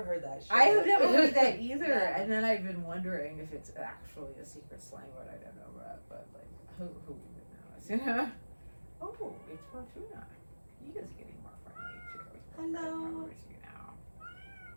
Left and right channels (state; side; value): inverted; both; correlation -1.00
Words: heard that shit. I have never heard that either, Yeah. and then I've been wondering if it's actually a secret slang word I don't know about, but like, who even knows, Oh, it's Fortuna. He is getting more friendly too. Hello. I remember you now.